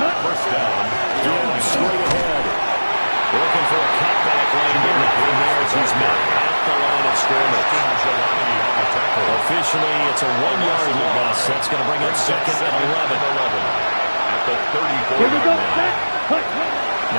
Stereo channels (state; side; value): inverted; both; correlation -1.00